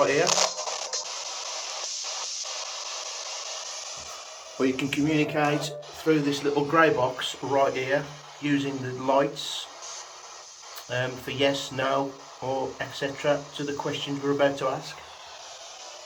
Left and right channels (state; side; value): identical; both; correlation 1.00